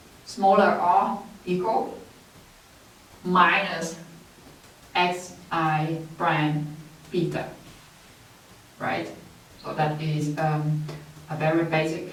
smaller or equal minus xi prime beta, right? So that is a very basic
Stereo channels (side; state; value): both; identical; correlation 1.00